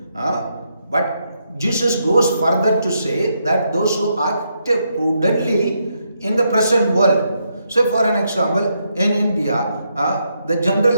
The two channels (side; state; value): both; inverted; correlation -0.79